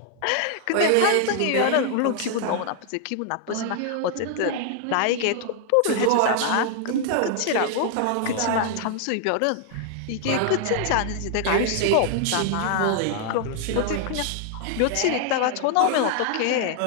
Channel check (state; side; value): different; both; correlation 0.00